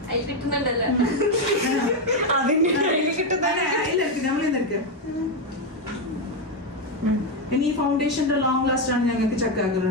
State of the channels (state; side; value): normal; both; correlation 0.06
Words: ഇനി ഈ ഫൗണ്ടേഷന്റെ ലോങ് ലാസ്റ്റ് ആണ് ഞങ്ങൾക്ക്